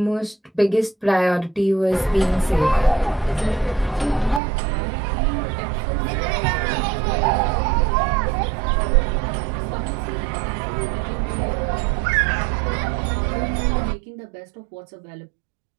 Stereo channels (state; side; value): drops out; left; at 4.4 s